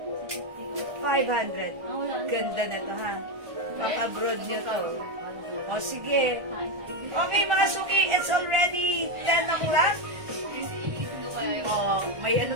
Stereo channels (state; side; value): late; left; 1.4 ms